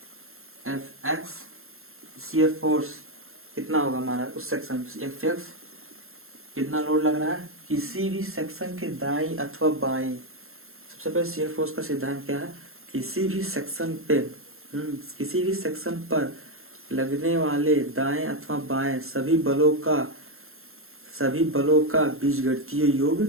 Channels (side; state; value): left; late; 0.61 ms